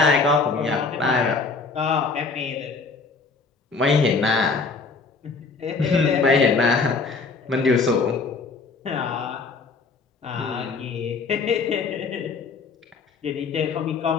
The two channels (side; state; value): right; quieter; 4.5 dB